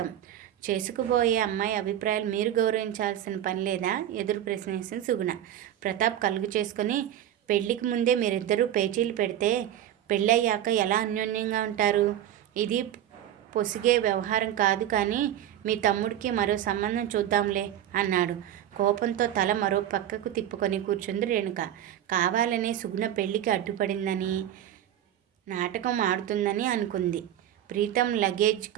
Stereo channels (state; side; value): quieter; left; 11.3 dB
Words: చేసుకుపోయే అమ్మాయి అభిప్రాయాలు మీరు గౌరవించాల్సిన పని లేదా? ఎదురు ప్రశ్నించింది సుగుణ. ప్రతాప్ కలుగు చేసుకుని పెళ్లికి ముందే మీరిద్దరూ పేచీలు పెడితే పెళ్ళయ్యాక ఎలా అన్యోన్యంగా ఉంటారు? ఇది పొసిగే వ్యవహారం కాదు కానీ మీ తమ్ముడికి మరో సంబంధం చూద్దాంలే అన్నాడు. కోపంతో తల మరో పక్కకు తిప్పుకొని కూర్చుంది రేణుక. కావాలనే సుగుణ పెళ్లికి అడ్డుపడిందని, నాటకం ఆడుతుందని అనుకుంది. ప్రీతం లగేజ్